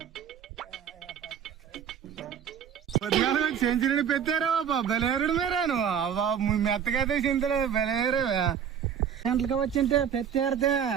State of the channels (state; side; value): quieter; left; 8.3 dB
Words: సెంచరీ పెట్టారా బాబా బలేరుడు మీరాను మెత్తకైతే చింతడు బలేరు గంటలకు వచ్చింటే పెట్టారితే